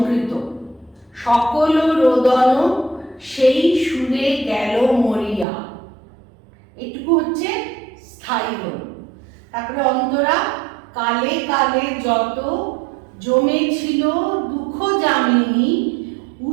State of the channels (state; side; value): drops out; left; at 5.5 s